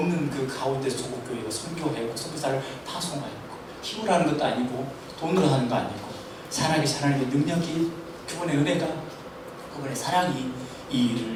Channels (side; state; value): both; identical; correlation 1.00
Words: 그 가운데 조국교회가 선교하고 선교사를 파송하였고 힘으로 하는 것도 아니고 돈으로 하는 거 아니고 살아계신 하나님의 능력이, 그분의 은혜가, 그분의 사랑이 이